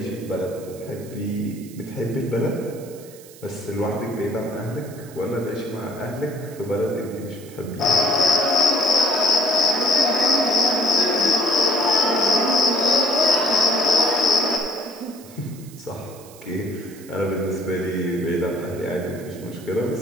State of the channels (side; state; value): right; noise; hiss, 21 dB below the sound